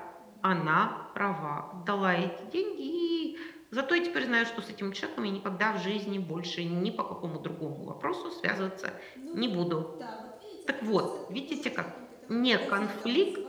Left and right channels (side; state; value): both; identical; correlation 1.00